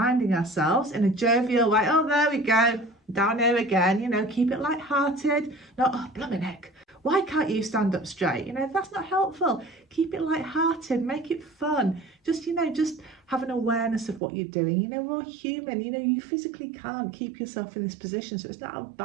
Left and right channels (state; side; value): drops out; left; at 14.2 s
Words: ourselves in a jovial way, oh, there we go, down here again, keep it light-hearted, not, oh, blimey heck, why can't you stand up straight? That's not helpful. Keep it light-hearted, make it fun. Just have an awareness of what you're doing. We're all human, you physically can't keep yourself in this position. So it's not a